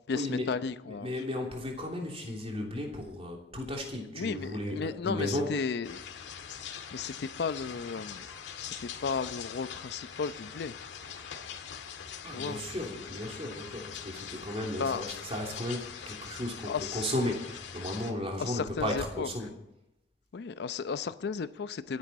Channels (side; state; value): right; quieter; 3.0 dB